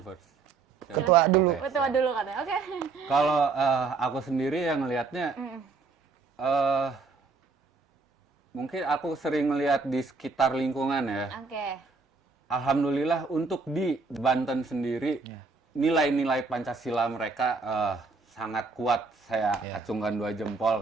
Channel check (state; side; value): quieter; left; 4.3 dB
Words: Ketua dulu. Ketua dulu katanya. Oke. Kalau aku sendiri yang ngelihatnya, mungkin aku sering melihat di sekitar lingkungan ya. Oke. Alhamdulillah untuk di Banten sendiri, nilai-nilai Pancasila mereka sangat kuat. Saya acungkan 2